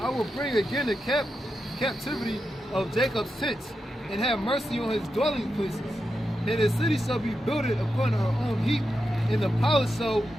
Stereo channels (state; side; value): normal; both; correlation 0.88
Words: will bring again the captivity of Jacob's tents, and have mercy on his dwelling places. And the city shall be builded upon her own heap, and the palace shall